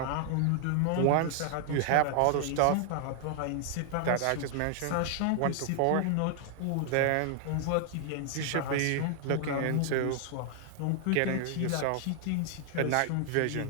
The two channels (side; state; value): both; different; correlation 0.00